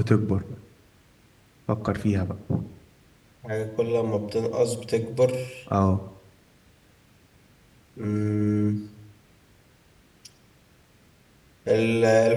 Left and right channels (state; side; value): identical; both; correlation 1.00